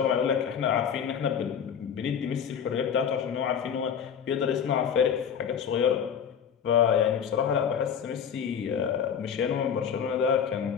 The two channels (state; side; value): quieter; right; 7.8 dB